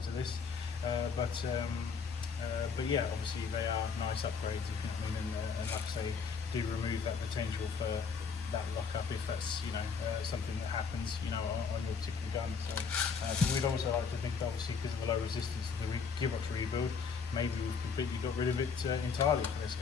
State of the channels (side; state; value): right; quieter; 5.7 dB